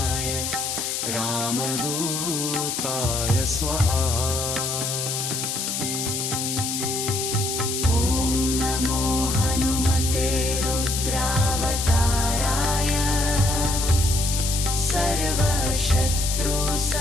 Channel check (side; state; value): left; noise; hiss, 2 dB below the sound